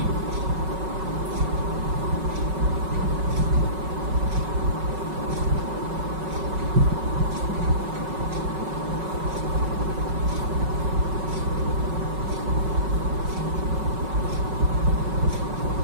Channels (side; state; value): left; late; 5.4 ms